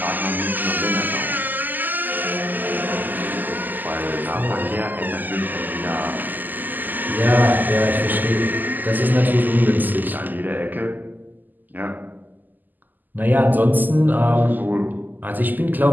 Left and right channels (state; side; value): late; left; 0.086 ms